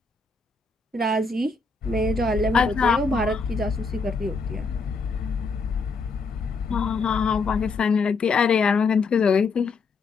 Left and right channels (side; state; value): right; quieter; 4.2 dB